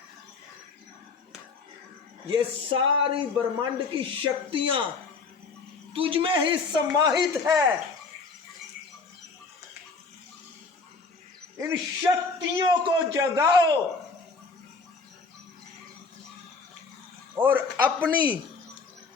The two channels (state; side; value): quieter; right; 4.4 dB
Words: ये सारी ब्रह्मांड की शक्तियां तुझ में ही समाहित है। इन शक्तियों को जगाओ और अपनी